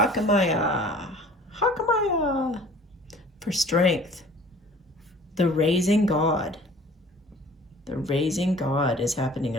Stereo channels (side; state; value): both; normal; correlation 0.48